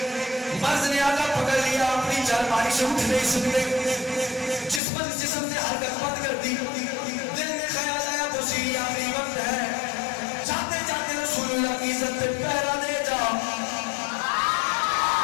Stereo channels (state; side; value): drops out; right; at 4.8 s